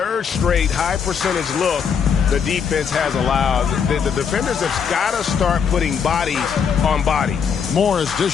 straight high percentage look the defense has allowed. The defenders have got to start putting bodies on bodies. Morris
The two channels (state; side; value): quieter; right; 6.9 dB